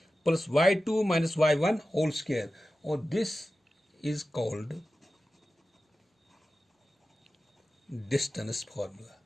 plus y2 minus y1 whole square, or this is called distance formula.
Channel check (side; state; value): both; normal; correlation 0.94